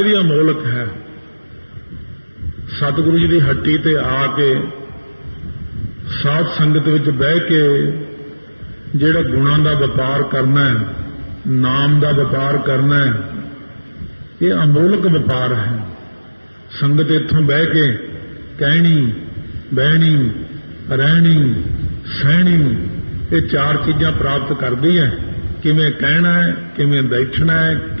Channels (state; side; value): inverted; both; correlation -1.00